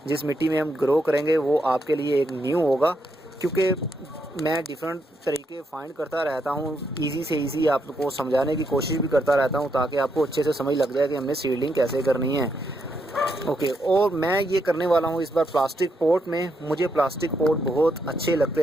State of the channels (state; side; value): normal; both; correlation 0.79